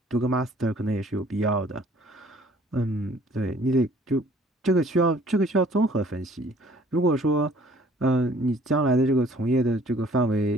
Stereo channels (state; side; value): normal; both; correlation 0.56